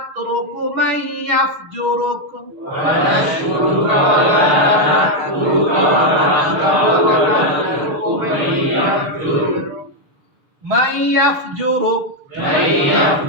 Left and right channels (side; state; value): left; late; 6.8 ms